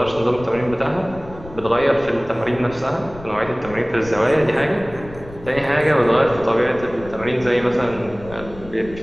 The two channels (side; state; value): left; noise; rumble, 17 dB below the sound